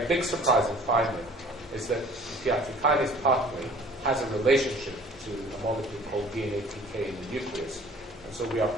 big surprising finding is that the PI3 kinase pathway has a relationship to a molecule called DNA-PK in the nucleus. And so we are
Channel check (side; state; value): both; normal; correlation 0.51